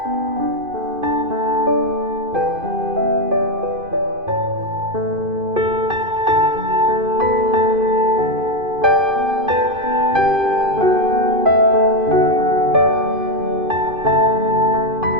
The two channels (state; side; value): late; left; 2.5 ms